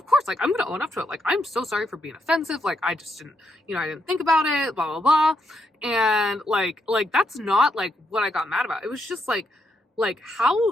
course, like I'm gonna own up to it. Like I'm so sorry for being offensive. Like I just didn't, I didn't think about it, blah blah blah. And like that's not like what I got mad about. It was just like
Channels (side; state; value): both; normal; correlation 0.79